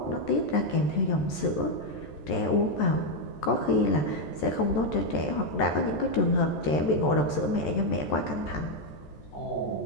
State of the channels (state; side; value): late; right; 14 ms